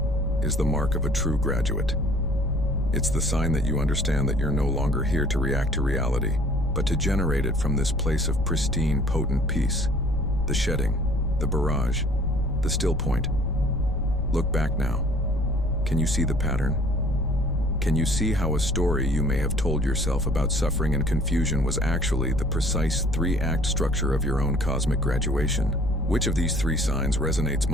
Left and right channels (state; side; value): noise; left; rumble, 7 dB below the sound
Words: is the mark of a true graduate. It's the sign that you understand that you're no longer here to react to reality, but to generate it from this place of pristine, potent peace. The shedding, the barrage, the still point. Look back now. Can you see the pattern? Can you see how a story you may have told yourself about suffering and confusion was actually the precise 3-act structure of your own cosmic graduation? Which of these 3 signs resonates